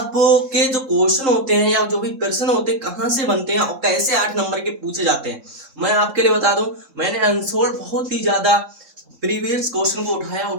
जो क्वेश्चन होते हैं या जो भी प्रश्न होते हैं कहाँ से बनते हैं और कैसे 8 नंबर के पूछे जाते हैं, मैं आपके लिए बता दूं। मैंने अनसोल्ड बहुत ही ज्यादा प्रीवियस क्वेश्चन को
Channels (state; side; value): late; left; 3.7 ms